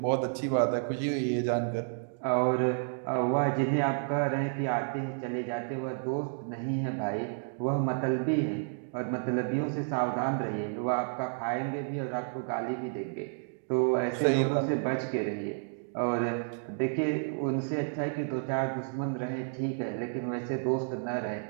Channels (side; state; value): left; silent; digital silence